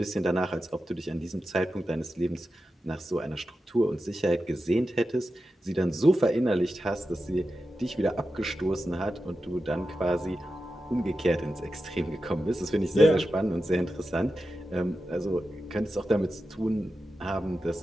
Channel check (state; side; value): normal; both; correlation 0.91